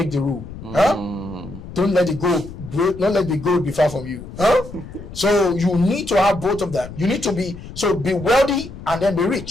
the rule. Don't let the gold be far from you. So you need to have both of them. You need to be wealthy and then be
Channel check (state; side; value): noise; left; rumble, 14 dB below the sound